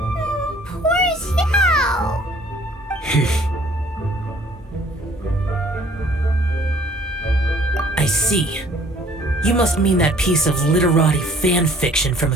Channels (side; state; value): both; normal; correlation 0.56